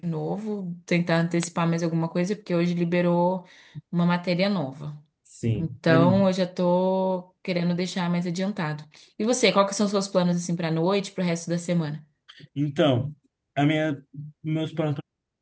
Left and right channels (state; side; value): identical; both; correlation 1.00